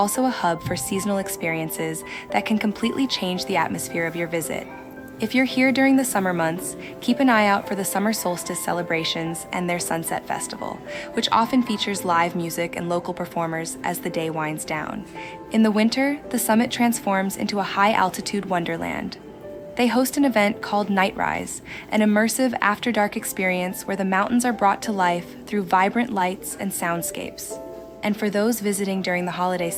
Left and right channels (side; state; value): both; identical; correlation 1.00